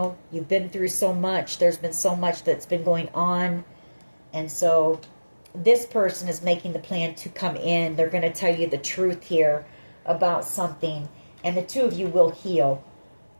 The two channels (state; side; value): inverted; both; correlation -1.00